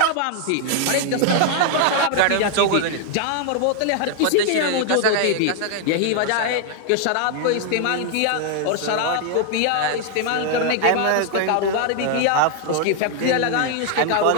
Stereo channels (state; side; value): different; both; correlation 0.00